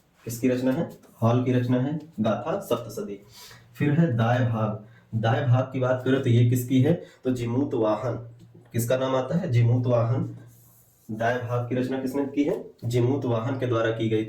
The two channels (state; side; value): identical; both; correlation 1.00